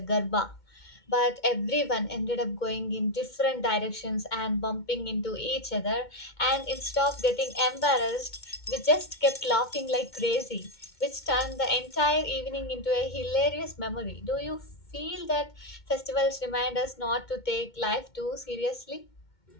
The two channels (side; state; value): right; late; 2.2 ms